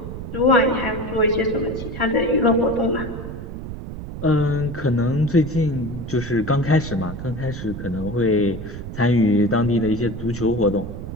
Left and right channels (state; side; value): noise; right; rumble, 9 dB below the sound